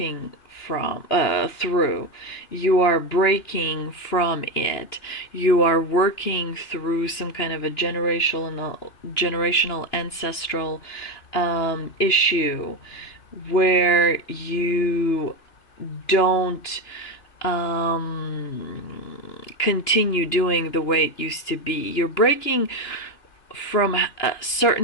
through. You are breaking from it. You are working through some kind of a generational ancestral issue where you don't continue doing the way it used to be. You're breaking from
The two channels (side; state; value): right; late; 2.8 ms